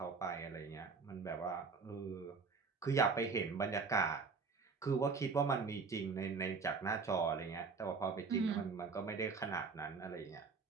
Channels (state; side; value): quieter; left; 4.8 dB